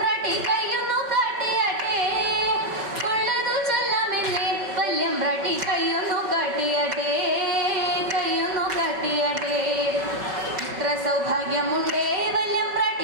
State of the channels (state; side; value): late; left; 5.3 ms